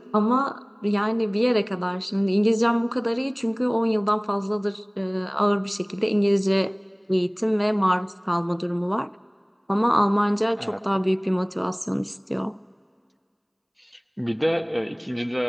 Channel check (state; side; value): identical; both; correlation 1.00